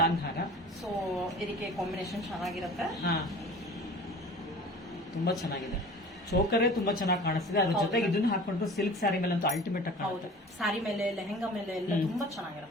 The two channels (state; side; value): normal; both; correlation 0.42